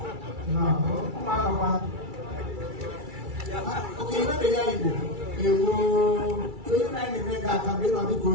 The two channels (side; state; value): left; late; 2.3 ms